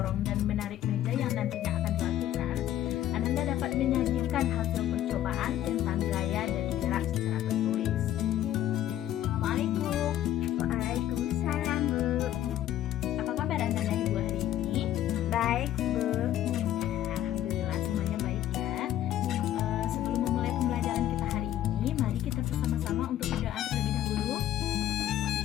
dan menarik meja yang nantinya akan dilakukan, Ananda dapat menyajikan hasil percobaan tentang gaya dan gerak secara tertulis. Assalamualaikum. Waalaikumsalam, Bu. Apa kabar Anda dan Ibu hari ini? Baik, Bu. Alhamdulillah semuanya baik ya. Sebelum memulai pembelajaran kita hari ini, mari kita bersama-sama untuk berdoa terlebih dahulu.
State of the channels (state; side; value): quieter; right; 12.3 dB